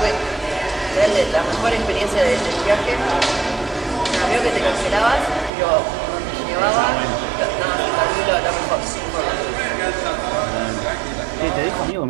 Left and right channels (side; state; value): left; drops out; at 5.5 s